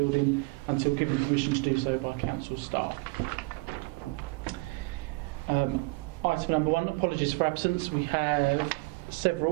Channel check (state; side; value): quieter; left; 26.2 dB